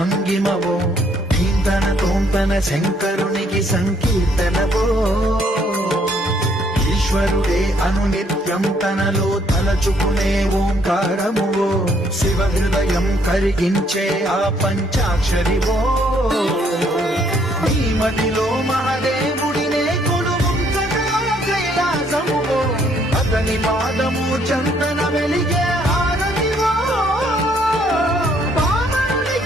నీంతన తోంతన శంకరునికి సంకీర్తనవో ఈశ్వరుడే అనునిత్యం తనలో తలచుకునే ఓంకారమువో శివ హృదయం కరిగించే ఆ పంచాక్షరివో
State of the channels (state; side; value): normal; both; correlation 0.67